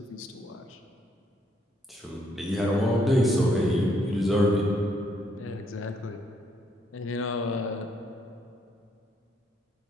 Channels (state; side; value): normal; both; correlation 0.72